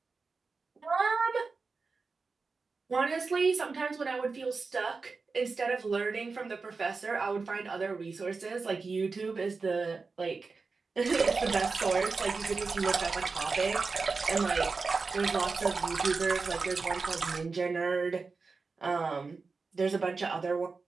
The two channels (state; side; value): quieter; left; 4.4 dB